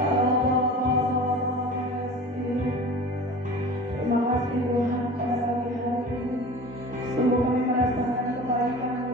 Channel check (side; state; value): both; normal; correlation 0.38